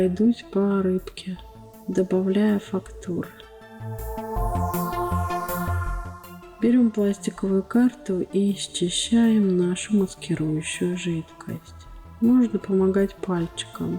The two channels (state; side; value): identical; both; correlation 1.00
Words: по рыбке, добавляя фактур. Берем пластиковую карту и счищаем нашу маскирующую жидкость. Можно помогать